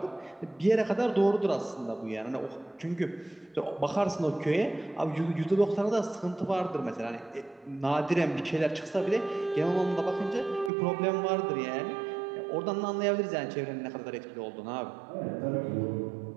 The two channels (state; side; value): drops out; left; at 10.7 s